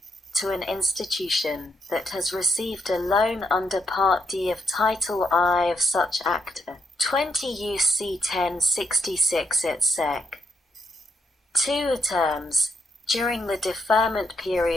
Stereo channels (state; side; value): normal; both; correlation 0.78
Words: to an institution that has received a loan under Part D of Title I of such Act, 20 U.C. 1066 etc. 2 terms, during the deferment